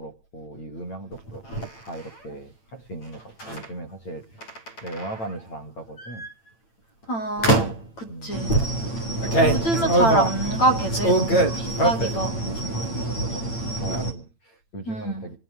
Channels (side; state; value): right; late; 8.9 ms